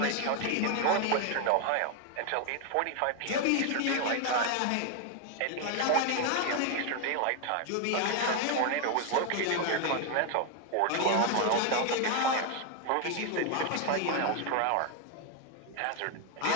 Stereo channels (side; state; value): both; different; correlation 0.01